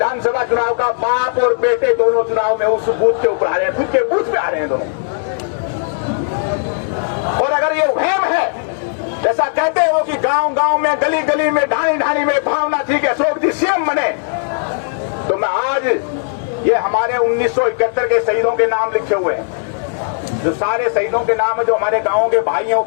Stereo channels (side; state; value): right; silent; digital silence